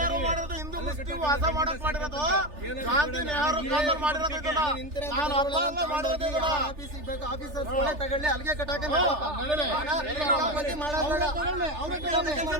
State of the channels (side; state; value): left; late; 3.4 ms